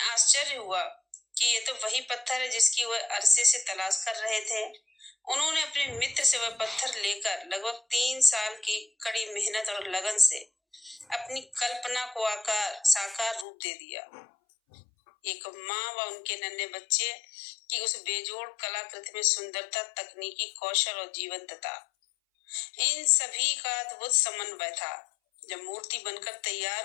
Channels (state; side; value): drops out; right; at 13.5 s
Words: हुआ कि ये तो वही पत्थर है जिसकी वह अरसे से तलाश कर रहे थे। उन्होंने अपने मित्र से वह पत्थर लेकर लगभग 3 साल की कड़ी मेहनत और लगन से अपनी कल्पना को साकार रूप दे दिया। एक माँ व उनके नन्हे बच्चे की उस बेजोड़ कलाकृति में सुंदरता, तकनीकी कौशल और जीवंतता, इन सभी का अद्भुत समन्वय था। जब मूर्ति बनकर